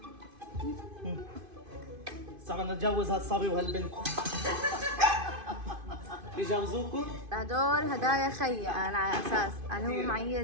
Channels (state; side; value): late; left; 2.5 ms